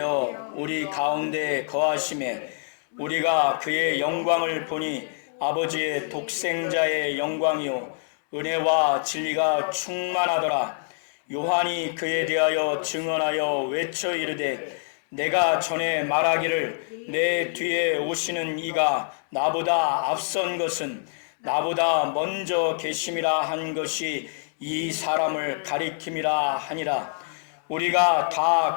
우리 가운데 거하심에 우리가 그의 영광을 보니 아버지의 독생자의 영광이요 은혜와 진리가 충만하더라. 요한이 그에 대하여 증언하여 외쳐 이르되 내가 전에 말하기를 내 뒤에 오시는 이가 나보다 앞선 것은 나보다 먼저 계심이라 한 것이 이 사람을 가리킴이라 하니라. 우리가 다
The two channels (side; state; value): right; silent; 61 dB below the other